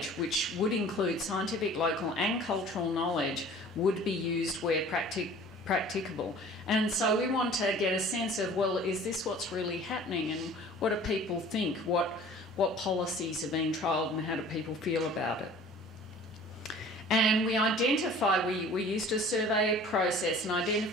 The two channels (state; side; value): normal; both; correlation 0.47